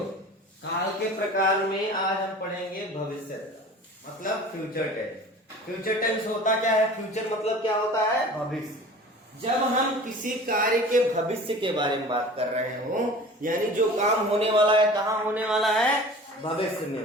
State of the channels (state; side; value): normal; both; correlation 0.41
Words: काल के प्रकार में आज हम पढ़ेंगे भविष्य मतलब फ्यूचर टेंस। फ्यूचर टेंस होता क्या है? फ्यूचर मतलब क्या होता है? भविष्य। जब हम किसी कार्य के भविष्य के बारे में बात कर रहे हो, यानी जो काम होने वाला है, कहाँ होने वाला है? भविष्य में